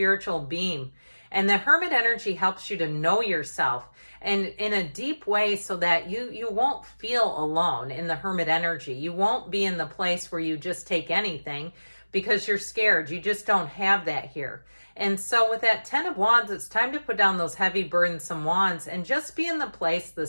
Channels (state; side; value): inverted; both; correlation -1.00